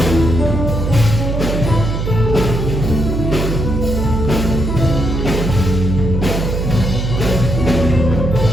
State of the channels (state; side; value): noise; right; hum, 2 dB below the sound